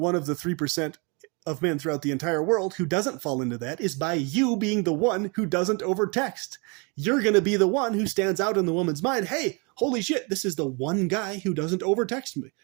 of the 3% of men throughout the entire world who doesn't fall into that is by you being the one who doesn't overtext. You're going to be the one who stands out in the woman's mind. Hey, holy shit, this is the one guy who doesn't overtext me.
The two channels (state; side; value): quieter; left; 31.8 dB